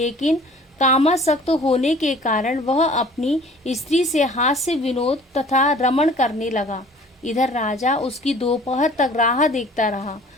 कामासक्त होने के कारण वह अपनी स्त्री से हास्य विनोद तथा रमण करने लगा। इधर राजा उसकी दोपहर तक राह देखता रहा।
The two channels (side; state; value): both; normal; correlation 0.49